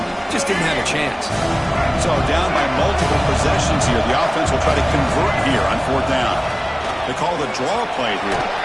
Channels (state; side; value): identical; both; correlation 1.00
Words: just didn't have a chance. So down by multiple possessions here. The offense will try to convert here on fourth down. They call the draw play here.